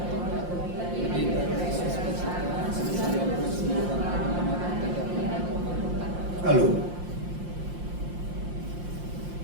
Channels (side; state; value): left; late; 5.7 ms